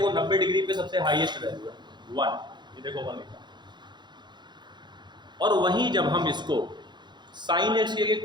90 डिग्री पे सबसे हाईएस्ट वैल्यू है 1, ये देखो 1 लिखा। और वहीं जब हम इसको साइन एक्स के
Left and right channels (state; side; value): late; left; 0.21 ms